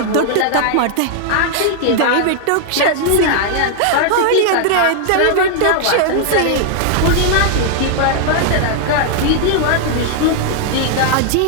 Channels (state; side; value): different; both; correlation 0.00